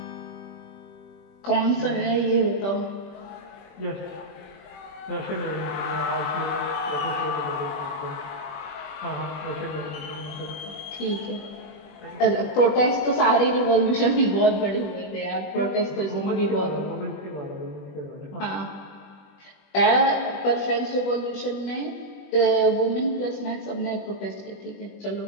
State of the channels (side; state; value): right; late; 20 ms